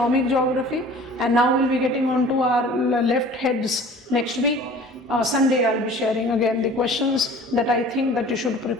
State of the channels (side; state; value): both; normal; correlation 0.46